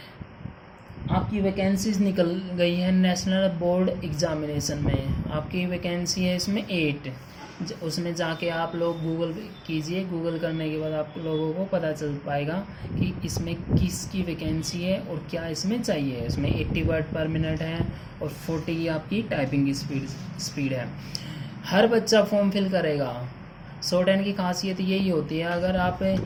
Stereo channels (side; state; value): both; identical; correlation 1.00